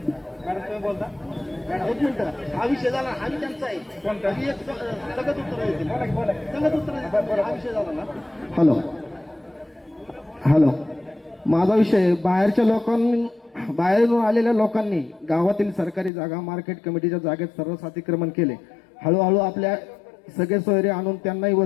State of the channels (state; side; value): drops out; right; at 16.1 s